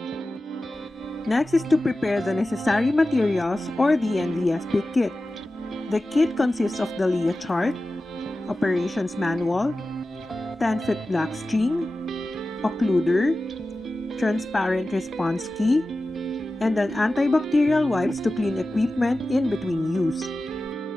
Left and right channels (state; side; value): normal; both; correlation 0.94